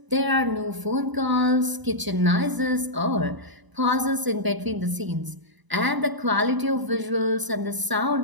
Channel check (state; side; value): late; left; 1.0 ms